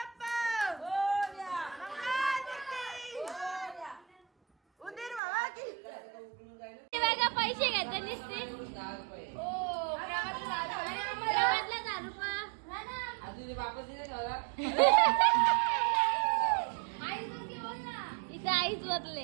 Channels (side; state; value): left; drops out; at 5.2 s